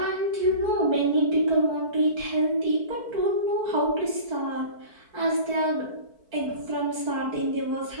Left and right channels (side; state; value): left; late; 4.5 ms